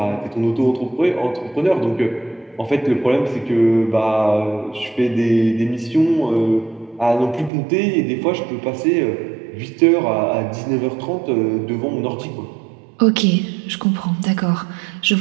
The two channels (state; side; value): drops out; left; at 7.5 s